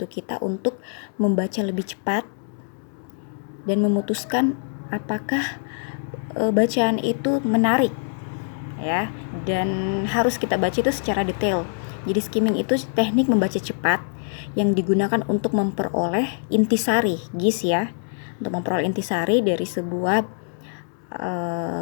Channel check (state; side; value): silent; right; digital silence